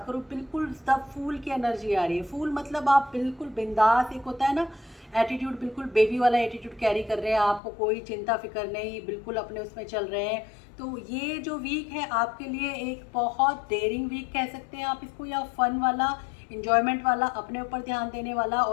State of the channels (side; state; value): right; drops out; at 7.6 s